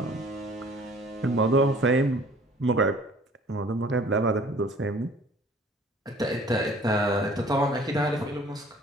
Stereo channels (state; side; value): normal; both; correlation 0.52